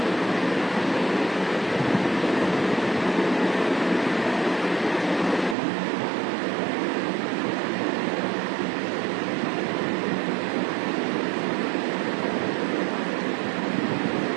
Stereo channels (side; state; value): left; drops out; at 5.6 s